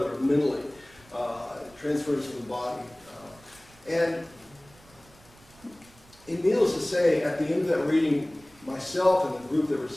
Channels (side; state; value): right; noise; rumble, 26 dB below the sound